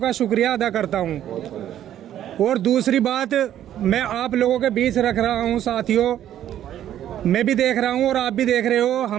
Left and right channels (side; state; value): left; quieter; 11.3 dB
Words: शुक्रिया अदा करता हूँ। और दूसरी बात मैं आप लोगों के बीच रख रहा हूँ साथियों, मैं भी देख रहा हूँ और आप भी देख रहे हो,